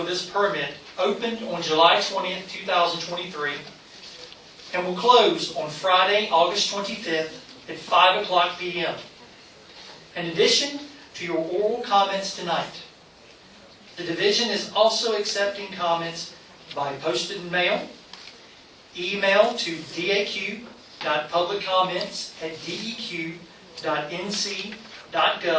this permit opened on July 20th, 2023 and will close on Friday, August 25th at 5 o'clock p.m. In addition to your oral comments tonight, the Division is also accepting comments by posted mail, email to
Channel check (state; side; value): identical; both; correlation 1.00